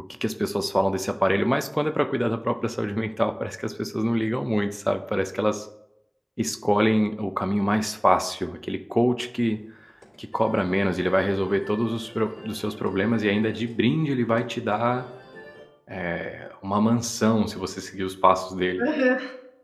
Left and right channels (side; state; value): both; identical; correlation 1.00